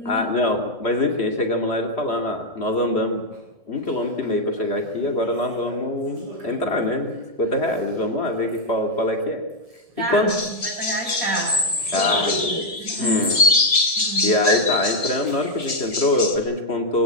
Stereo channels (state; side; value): late; left; 1.7 ms